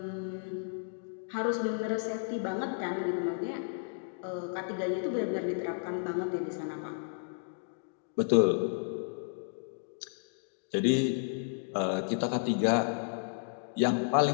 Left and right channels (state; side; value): silent; right; digital silence